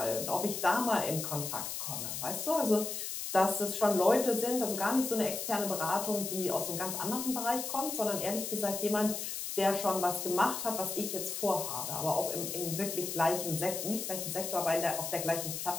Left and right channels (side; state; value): left; noise; hiss, 5 dB below the sound